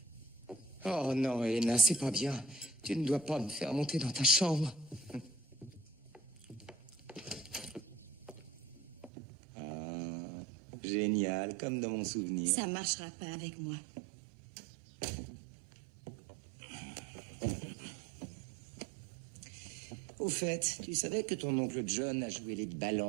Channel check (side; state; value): left; drops out; at 9.1 s